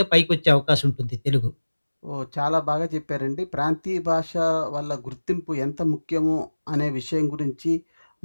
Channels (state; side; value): inverted; both; correlation -1.00